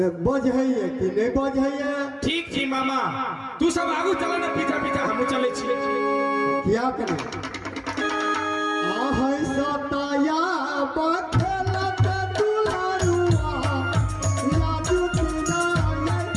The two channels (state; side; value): identical; both; correlation 1.00